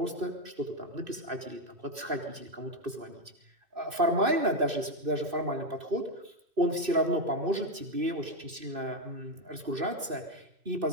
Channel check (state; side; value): late; left; 2.6 ms